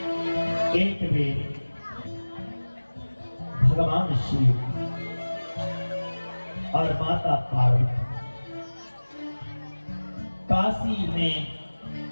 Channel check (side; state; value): both; inverted; correlation -1.00